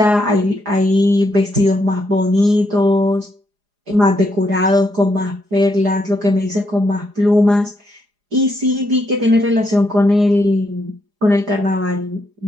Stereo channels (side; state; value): left; late; 4.9 ms